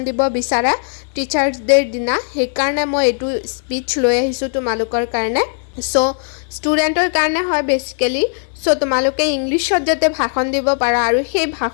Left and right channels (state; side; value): silent; right; 68 dB below the other